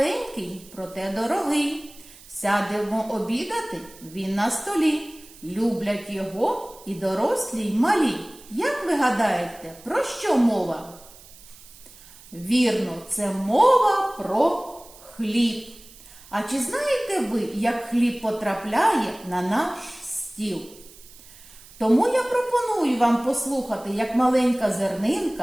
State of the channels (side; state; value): right; noise; hiss, 21 dB below the sound